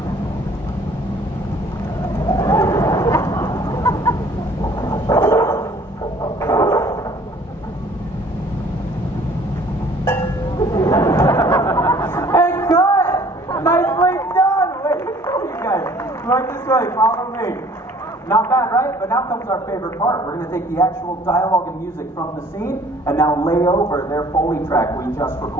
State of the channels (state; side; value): normal; both; correlation 0.54